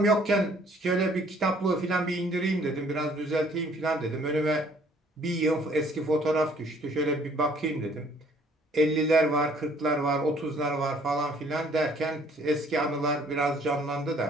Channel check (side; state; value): both; normal; correlation 0.59